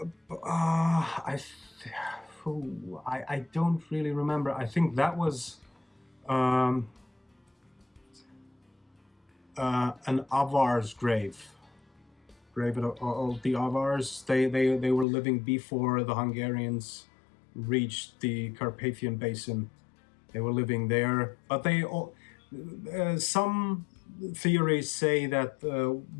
don't really remember. I think that was an Avar's grave of the Avars. They were living before the Hungarians reached the Carpathian Basin. They were living there, but some theories say that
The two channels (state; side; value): drops out; right; at 15.1 s